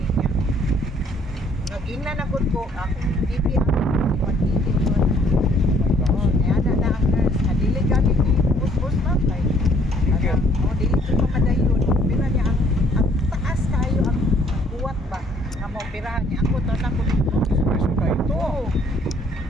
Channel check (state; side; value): normal; both; correlation 0.62